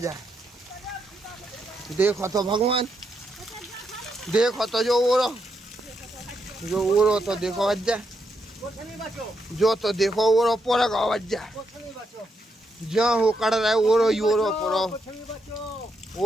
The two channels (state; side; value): normal; both; correlation 0.80